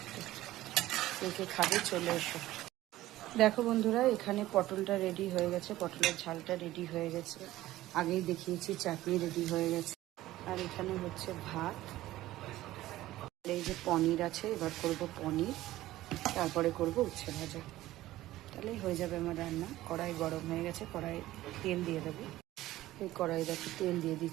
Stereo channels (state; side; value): quieter; left; 15.7 dB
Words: কে খাবে চলে এসো। দেখো বন্ধুরা, এখানে পটলটা রেডি হয়ে গেছে, পটলের ঝালটা রেডি হয়ে গেছে, আগেই দেখিয়েছি। চাটনি রেডি হয়ে গেছে, আর এখানে হচ্ছে ভাত। এই যে পনির আছে, এবার করব পনির, তারপরে করব উচ্ছে ভাজা। তাহলেই হয়ে যাবে আমার রান্না। কড়াই গরম হয়ে গেছে, কড়াই তেল দিয়ে দেবো। এই কড়াই দেখো তেল দিয়ে